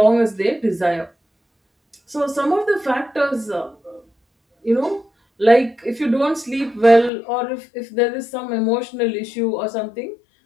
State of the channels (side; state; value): right; drops out; at 7.1 s